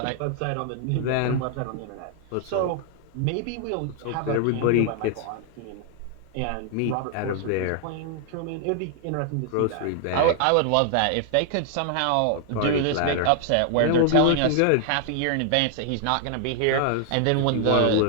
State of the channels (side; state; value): both; different; correlation 0.00